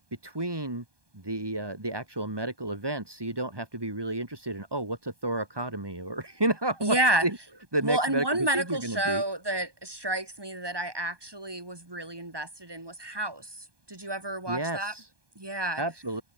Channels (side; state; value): left; late; 1.2 ms